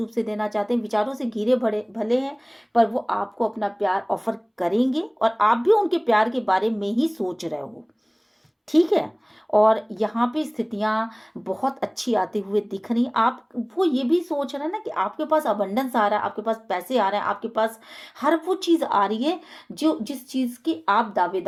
से देना चाहते हैं, विचारों से घिरे भरे भले हैं, पर वो आपको अपना प्यार ऑफर करेंगे और आप भी उनके प्यार के बारे में ही सोच रहे हो। ठीक है, और यहाँ पे स्थितियां बहुत अच्छी आती हुए दिख रही। आप वो ये भी सोच रहे हैं ना कि आपके पास अबंडेंस आ रहा है, आपके पास पैसे आ रहे हैं, आपके पास हर वो चीज़ आ रही है जो जिस चीज़ की आप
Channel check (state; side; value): identical; both; correlation 1.00